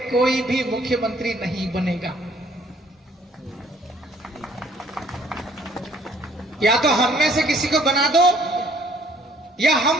कोई भी मुख्यमंत्री नहीं बनेगा। या तो हम में से किसी को बना दो, या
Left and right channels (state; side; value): normal; both; correlation 0.61